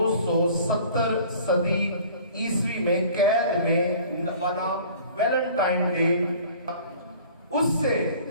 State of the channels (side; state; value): both; inverted; correlation -0.48